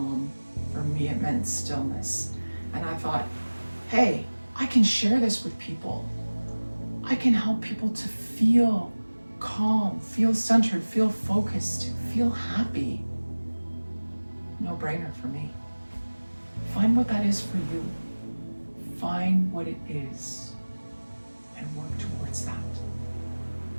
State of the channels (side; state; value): both; inverted; correlation -1.00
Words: for me it meant stillness. And I thought, hey, I can share this with people. I can help people to feel calm, feel centered, feel focused, feel happy. No brainer for me. Find what that is for you. Find what it is and work towards that.